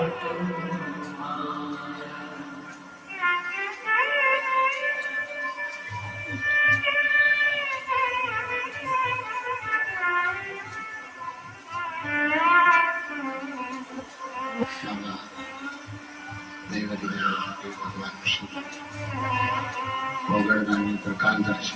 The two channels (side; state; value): both; identical; correlation 1.00